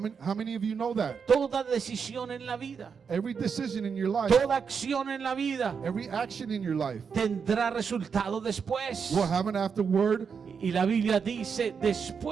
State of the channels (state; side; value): quieter; left; 6.2 dB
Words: many of you know that? Toda decisión en la vida, Every decision in your life, toda acción en la vida every action in your life tendrá resultado después. will have an afterward Y la Biblia dice,